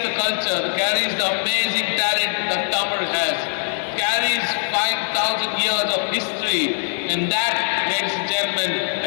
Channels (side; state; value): right; silent; digital silence